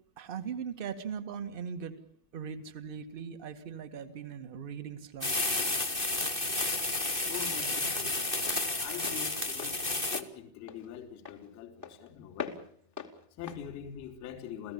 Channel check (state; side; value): late; left; 2.6 ms